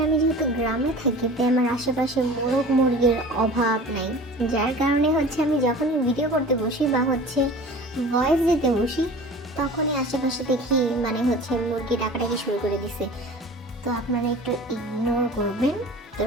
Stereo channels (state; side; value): normal; both; correlation 0.40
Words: আমি যেহেতু গ্রামে থাকি, তাই আমার আশেপাশে মোরগ মুরগির অভাব নাই, যার কারণে আমি যখনই ভিডিও করতে বসি বা ভয়েস দিতে বসি, তখনই আশেপাশে দেখি মুরগি ডাকাডাকি শুরু করে দিছে। তো আপনারা একটু ইগনোর করবেন, তো